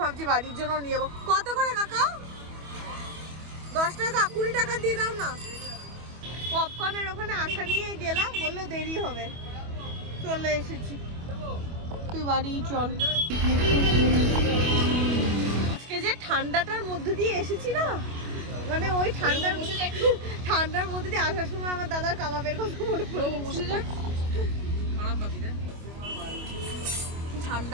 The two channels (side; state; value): left; late; 25 ms